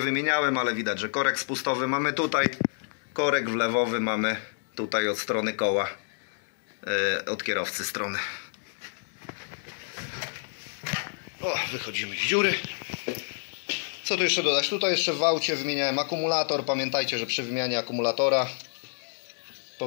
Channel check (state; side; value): silent; right; digital silence